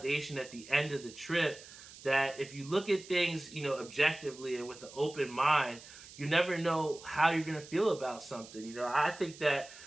at the end of the trip that if you look at things, objectively and with an open mind, you never know how you're going to feel about something. I think that,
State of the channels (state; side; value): noise; right; hiss, 18 dB below the sound